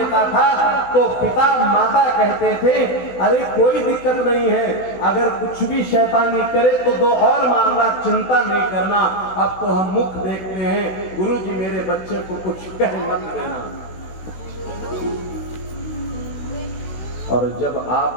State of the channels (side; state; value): right; late; 16 ms